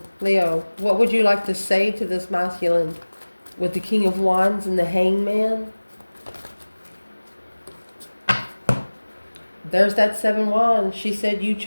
Leo, what would you like to say to this masculine with the King of Wands and the Hangman? There's that 7 wands. She said you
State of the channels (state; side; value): inverted; both; correlation -1.00